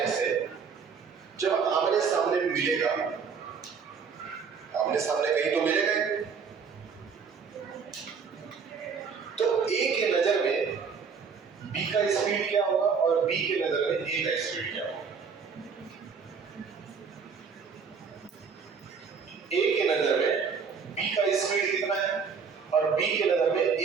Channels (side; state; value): left; quieter; 5.9 dB